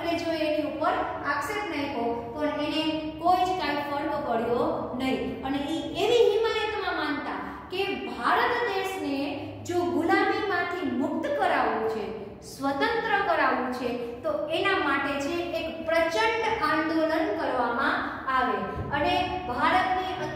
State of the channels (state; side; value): identical; both; correlation 1.00